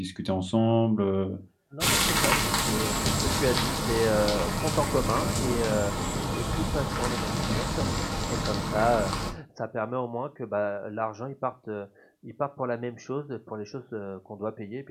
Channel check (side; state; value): both; identical; correlation 1.00